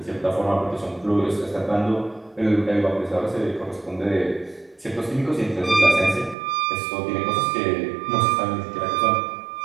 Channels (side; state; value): left; drops out; at 6.4 s